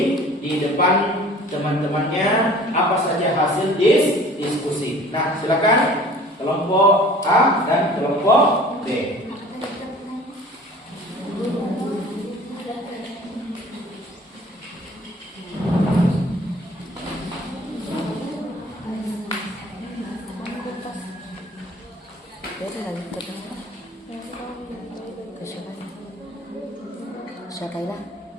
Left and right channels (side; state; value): both; normal; correlation 0.48